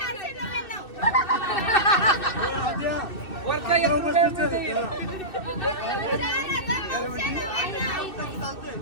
वरचा 1 रुपयाने देईल.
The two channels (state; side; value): late; right; 2.6 ms